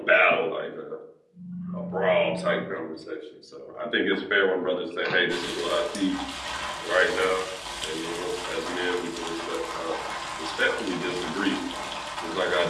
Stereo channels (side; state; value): both; identical; correlation 1.00